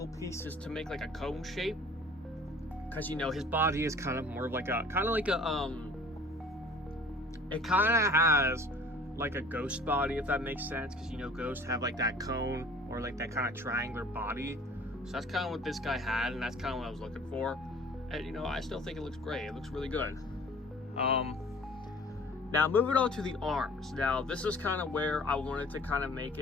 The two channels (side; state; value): both; normal; correlation 0.49